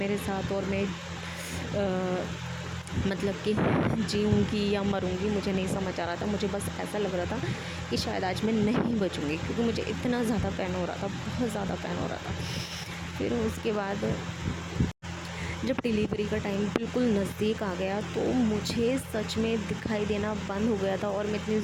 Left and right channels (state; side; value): identical; both; correlation 1.00